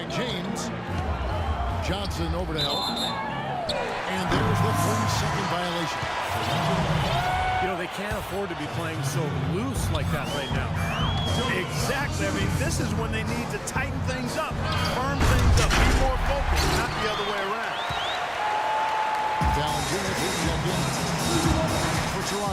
James. Johnson over to help. And there's the 30-second violation. You know, they can't afford to be playing so loose like that right now. Exactly. I mean, this is when they need to tighten things up, firm things up, be more focused, not the other way around. Down Jr. checked in for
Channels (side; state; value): both; identical; correlation 1.00